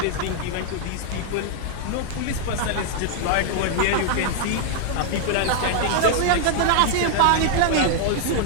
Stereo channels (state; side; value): different; both; correlation 0.00